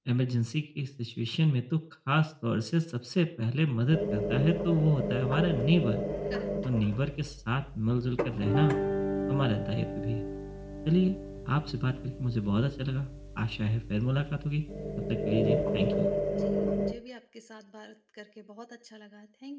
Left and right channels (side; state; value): both; identical; correlation 1.00